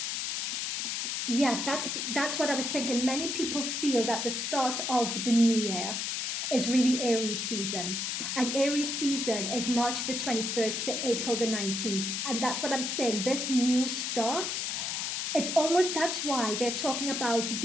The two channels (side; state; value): left; noise; hiss, 1 dB below the sound